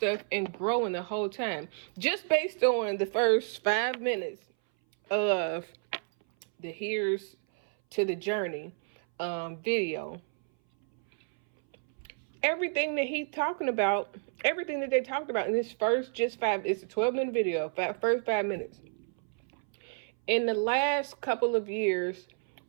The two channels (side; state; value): left; silent; 58 dB below the other